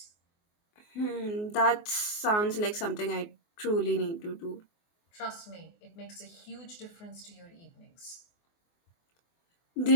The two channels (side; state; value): right; late; 24 ms